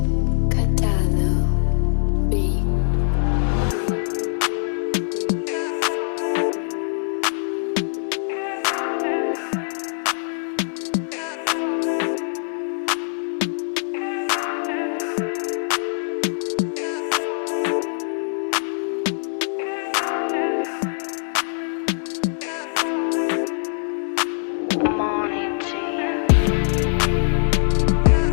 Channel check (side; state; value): right; silent; digital silence